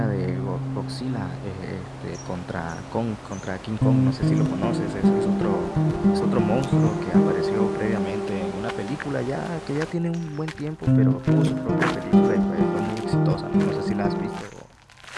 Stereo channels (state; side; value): identical; both; correlation 1.00